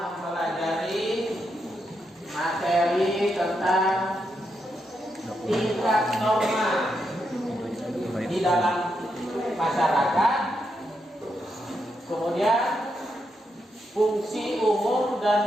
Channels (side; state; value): both; normal; correlation 0.82